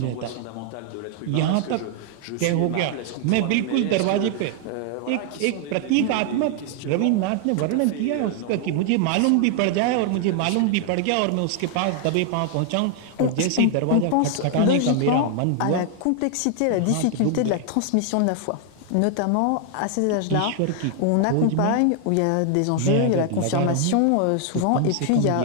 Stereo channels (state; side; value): different; both; correlation 0.00